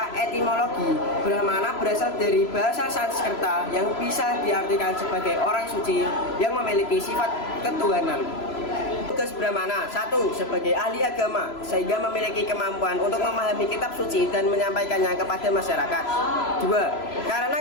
etimologi, Brahmana berasal dari bahasa Sanskerta yang bisa diartikan sebagai orang suci yang memiliki sifat ketuhanan. Tugas Brahmana: 1. Sebagai ahli agama, sehingga memiliki kemampuan untuk memahami kitab suci dan menyampaikannya kepada masyarakat. 2. Karena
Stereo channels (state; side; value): late; right; 3.0 ms